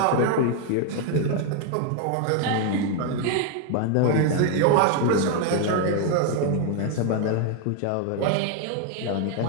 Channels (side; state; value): both; different; correlation 0.01